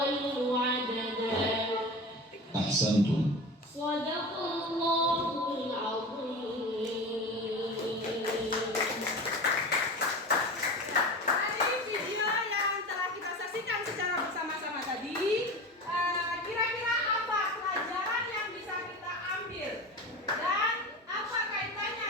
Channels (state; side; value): normal; both; correlation 0.30